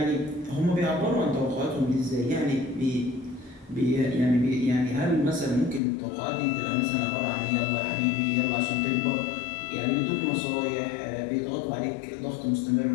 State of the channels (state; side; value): drops out; right; at 5.8 s